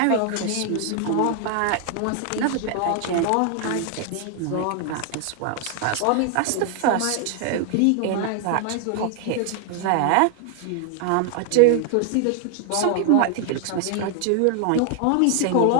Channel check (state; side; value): different; both; correlation 0.00